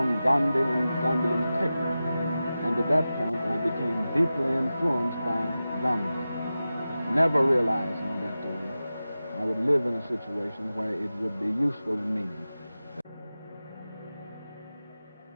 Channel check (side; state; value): both; inverted; correlation -0.94